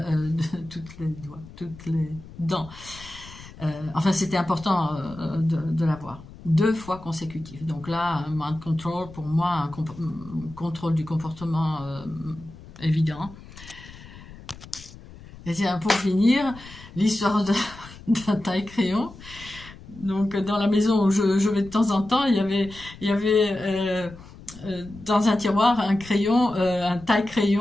les dents. Enfin, c'était important de l'avoir. 2 fois consécutives. Donc là, un mind control, pour moi, un contrôle du comportement évident. Et tiens, pour finir, l'histoire d'un taille-crayon. Donc, dans la maison où je vais de temps en temps, il y avait dans un tiroir un crayon, un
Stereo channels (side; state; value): left; noise; rumble, 18 dB below the sound